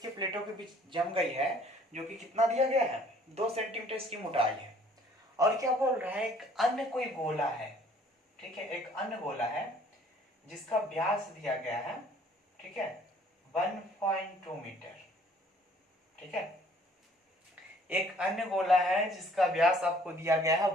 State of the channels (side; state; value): both; normal; correlation 0.58